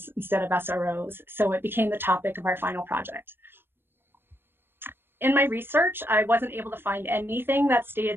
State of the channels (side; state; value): left; late; 0.10 ms